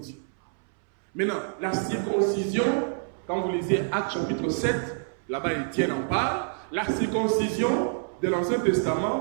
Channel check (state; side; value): silent; left; 60 dB below the other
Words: Maintenant, la circoncision, quand vous lisez Actes chapitre 7, là-bas Étienne en parle, la circoncision de l'Ancien